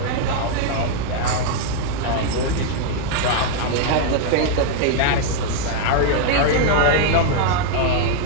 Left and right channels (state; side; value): different; both; correlation 0.00